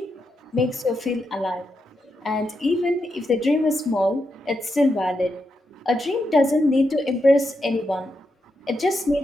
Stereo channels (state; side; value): normal; both; correlation 0.84